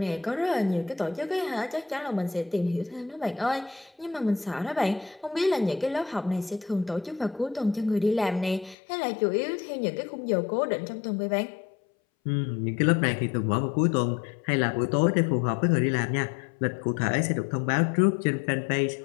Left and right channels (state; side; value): drops out; right; at 8.8 s